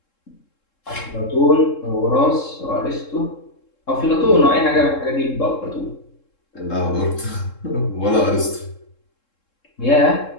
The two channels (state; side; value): late; right; 3.7 ms